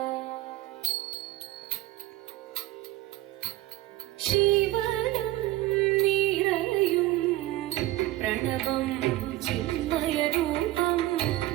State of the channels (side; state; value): left; quieter; 16.8 dB